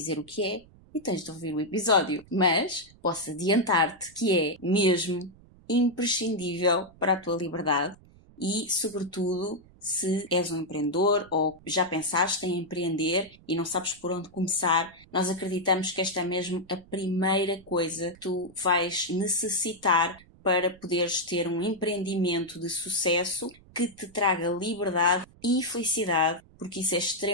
o que é e tens de ouvir o episódio. Mas posso adiantar-te que é mesmo imprescindível para a tua liberdade e, sobretudo, se és um empreendedor ou já pensaste em empreender e não sabes por onde começar, nós acreditamos que esta é mesmo a primeira coisa que tu vais necessitar para poderes ter um empreendimento de sucesso que te traga liberdade e felicidade, porque isso é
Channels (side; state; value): right; noise; rumble, 25 dB below the sound